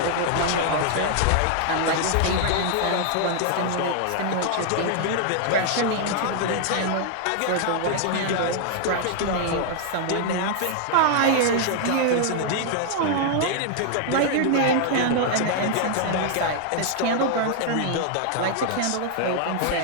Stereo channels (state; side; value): different; both; correlation 0.00